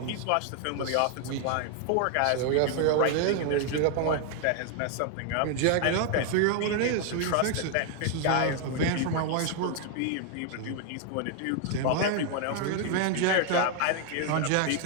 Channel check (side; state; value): both; different; correlation 0.00